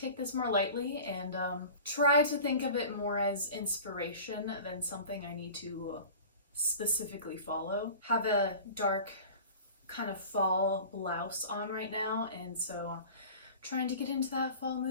this more lightly and try to think of it more as inspiration than something I need to specifically follow. Have a dark kind of fall blouse on right now, and so trying to get into that fall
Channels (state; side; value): inverted; both; correlation -0.39